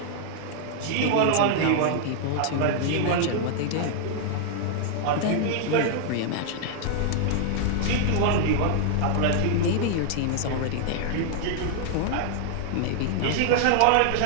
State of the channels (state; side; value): different; both; correlation 0.00